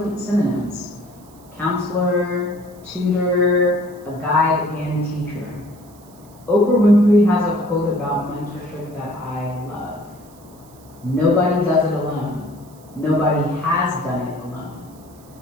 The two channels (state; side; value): noise; right; hiss, 27 dB below the sound